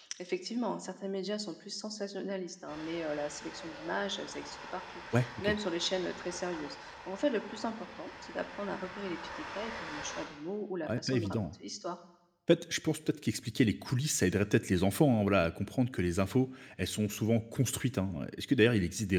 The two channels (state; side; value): identical; both; correlation 1.00